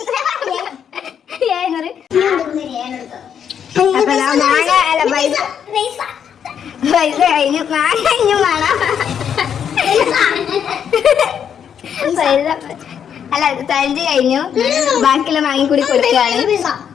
പൈസ കഴിഞ്ഞു. മാങ്ങ കഴിഞ്ഞു വേണം. അല്ല ചലഞ്ച് കഴിഞ്ഞു. ബാക്കിയുള്ള മാങ്ങി കൂടി കൊടുക്കുകയാണ്.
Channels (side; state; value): right; quieter; 8.2 dB